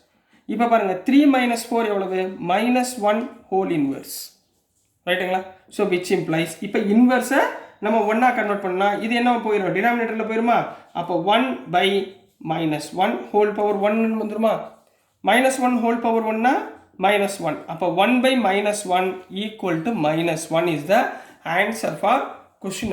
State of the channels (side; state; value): both; identical; correlation 1.00